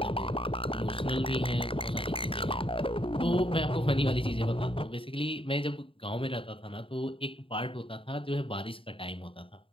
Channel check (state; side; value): late; right; 0.26 ms